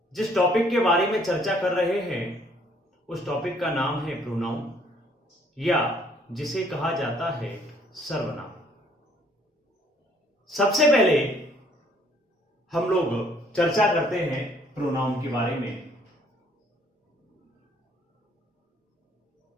जिस टॉपिक के बारे में चर्चा कर रहे हैं उस टॉपिक का नाम है प्रोनाउन या जिसे कहा जाता है सर्वनाम। सबसे पहले हम लोग चर्चा करते हैं प्रोनाउन के बारे में।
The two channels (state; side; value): normal; both; correlation 0.62